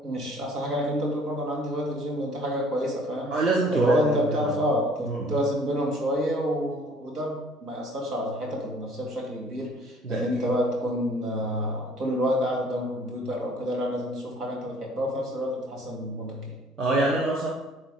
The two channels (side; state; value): both; normal; correlation 0.55